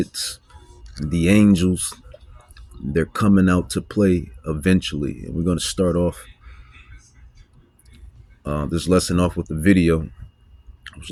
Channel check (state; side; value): identical; both; correlation 1.00